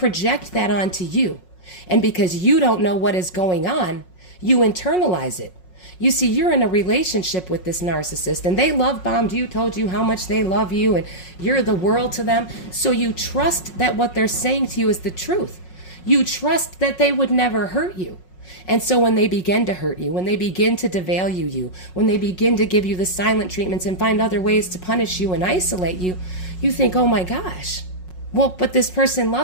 that onto you. And because you don't know what is going on, you internalize it. You see, you're in a relationship with this narcissist and they love bombed you, told you how much they love you and you're the world to them. So you trust that what they're saying to you is the truth. You trust that they would never hurt you. And so when they begin to hurt you, when they begin to devalue you, when they begin to give you the silent treatments and find other ways to punish you and isolate you, you think, oh my gosh, well, but this person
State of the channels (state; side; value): late; right; 5.5 ms